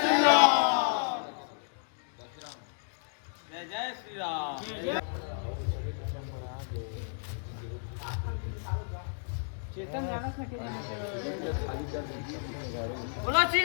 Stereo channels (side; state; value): right; silent; digital silence